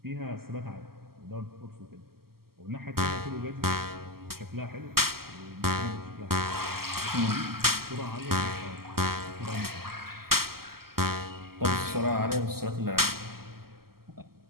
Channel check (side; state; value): left; late; 0.94 ms